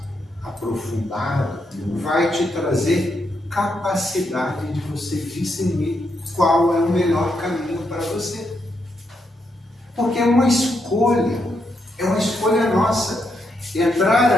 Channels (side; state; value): both; normal; correlation 0.80